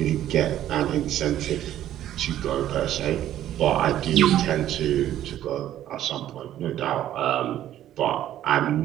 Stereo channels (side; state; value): left; quieter; 12.2 dB